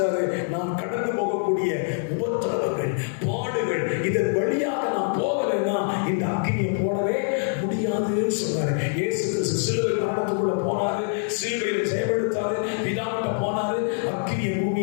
நான் கடந்து போகக்கூடிய உபத்திரவங்கள், பாடுகள், இதன் வழியாக நான் போகலைன்னா இந்த அக்கினியை போடவே முடியாதுன்னு சொன்னாரு. இயேசு கிறிஸ்து சிலுவை மரணத்துக்குள்ள போனாரு, சிலுவையில ஜெயமெடுத்தாரு, பிதாவிட்ட போனாரு, அக்கினியை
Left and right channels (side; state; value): right; silent; 62 dB below the other